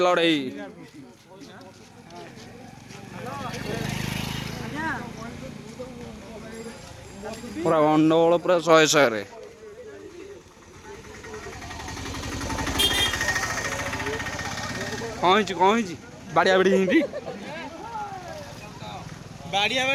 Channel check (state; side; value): identical; both; correlation 1.00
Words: पूरा गंडगोल पूरा 100 रे कौन बाड़िया बाड़ी हिंदी बाड़िया